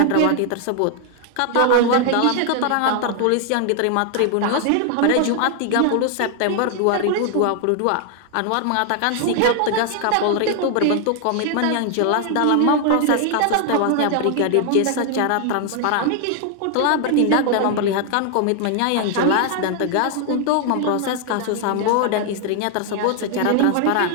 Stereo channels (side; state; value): both; different; correlation 0.00